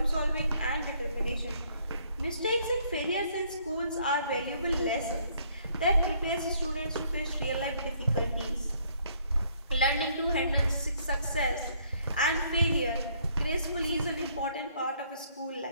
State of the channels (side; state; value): both; inverted; correlation -0.65